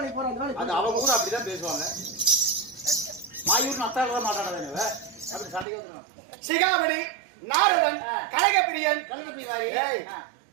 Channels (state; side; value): drops out; left; at 5.7 s